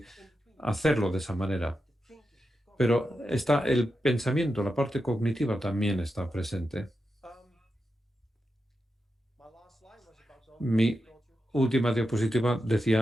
hacerlo de esa manera. Pero está el pensamiento, la parte cognitiva también está presente. Mi última diapositiva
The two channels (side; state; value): both; normal; correlation 0.88